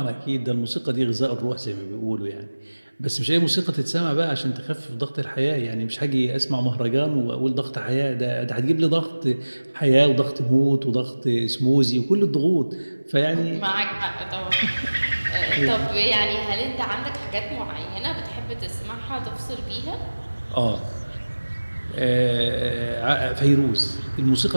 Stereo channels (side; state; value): both; inverted; correlation -1.00